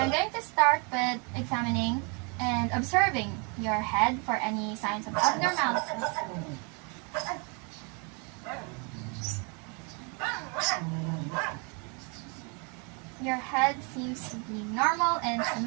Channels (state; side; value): quieter; left; 34.1 dB